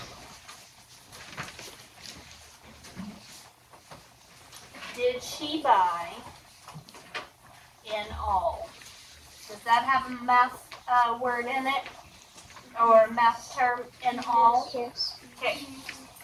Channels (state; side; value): identical; both; correlation 1.00